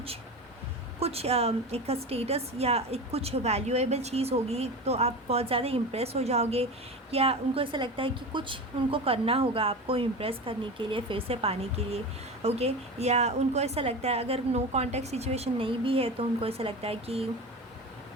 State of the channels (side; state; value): both; normal; correlation 0.27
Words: एक स्टेटस या एक कुछ वैल्यूएबल चीज़ होगी तो आप बहुत ज़्यादा इम्प्रेस हो जाओगे, या उनको ऐसा लगता है कि कुछ उनको करना होगा आपको इम्प्रेस करने के लिए, फिर से पाने के लिए। ओके, या उनको ऐसा लगता है अगर नो कॉन्टैक्ट सिचुएशन नहीं भी है तो उनको ऐसा लगता है कि